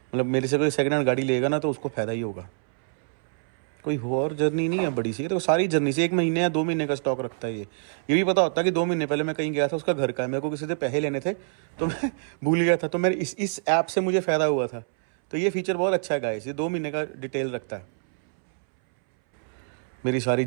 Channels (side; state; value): left; silent; 61 dB below the other